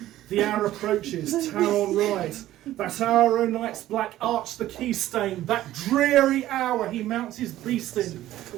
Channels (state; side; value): quieter; left; 14.2 dB